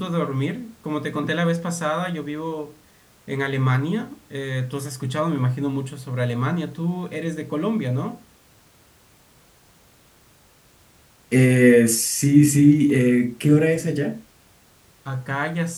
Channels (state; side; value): identical; both; correlation 1.00